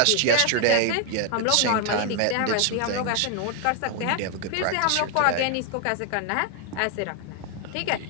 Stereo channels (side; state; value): both; different; correlation 0.00